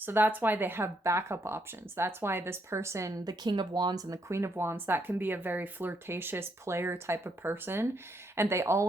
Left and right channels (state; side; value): normal; both; correlation 0.75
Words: that's why they have backup options. That's why this person, the King of Wands and the Queen of Wands, that can be a very flirtatious player type of person. And they